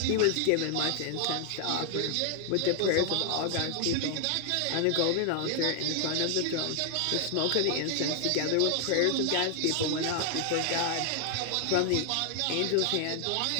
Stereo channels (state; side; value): different; both; correlation 0.00